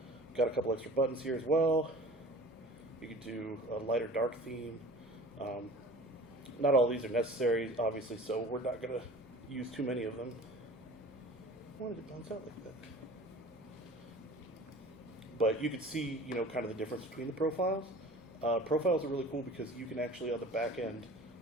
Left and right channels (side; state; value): both; normal; correlation 0.43